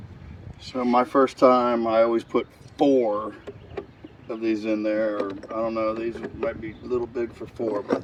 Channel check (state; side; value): identical; both; correlation 1.00